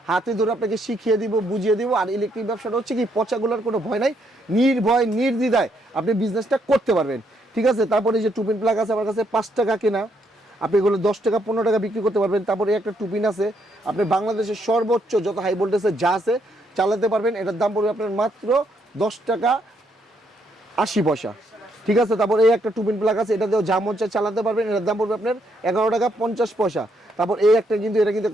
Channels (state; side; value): normal; both; correlation 0.74